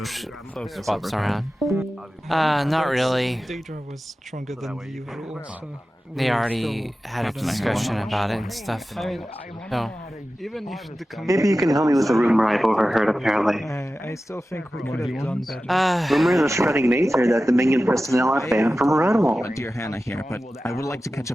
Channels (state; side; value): normal; both; correlation 0.94